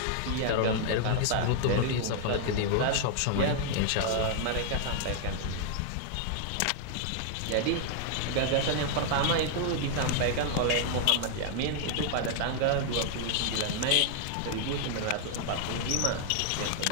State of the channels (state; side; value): different; both; correlation 0.00